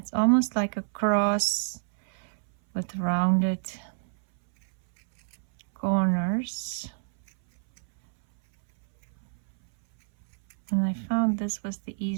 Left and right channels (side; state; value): left; silent; 60 dB below the other